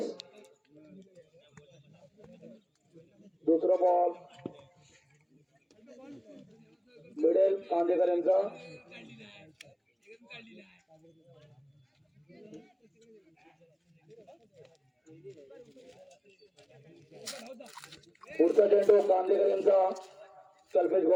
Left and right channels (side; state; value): both; identical; correlation 1.00